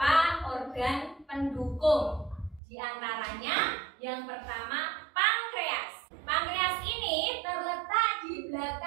organ pendukung. Di antaranya yang pertama pankreas. Pankreas ini terletak di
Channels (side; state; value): left; drops out; at 2.6 s